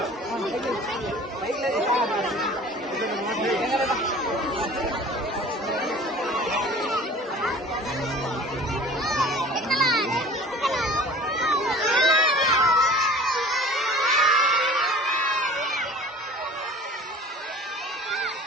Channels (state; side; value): normal; both; correlation 0.44